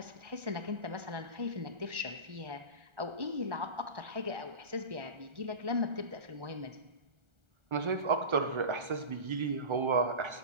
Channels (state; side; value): late; left; 1.3 ms